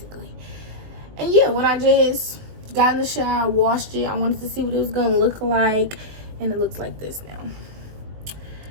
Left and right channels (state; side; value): late; left; 19 ms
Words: And yeah, when I just got in the shower, washed it, I wanted to see what it was going to look like. And it looks like this now.